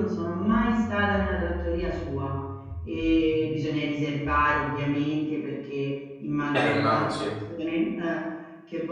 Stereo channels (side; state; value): both; identical; correlation 1.00